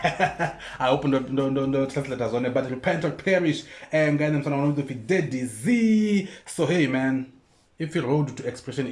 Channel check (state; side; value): identical; both; correlation 1.00